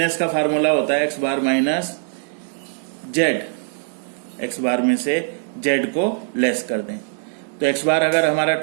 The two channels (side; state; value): left; silent; digital silence